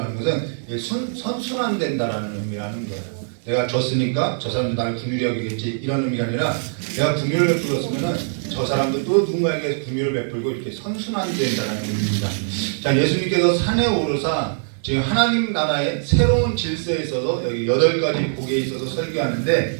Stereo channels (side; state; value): left; silent; digital silence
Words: 것은 선순환된다라는 의미라는 거예요. 내가 줬으니까 저 사람도 나를 긍휼히 여기겠지 이런 의미가 아니라, 내가 긍휼을 베풀었으면은 저 사람도 또 누군가에게 긍휼을 베풀고 이렇게 선순환된다는 의미입니다. 자, 예수님께서 산에 오르사 지금 하나님 나라의 새로운 질서에 있어서 여기 8가지 복에 있어서 설교하는데,